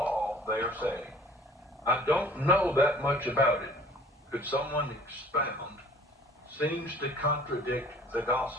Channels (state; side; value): normal; both; correlation 0.50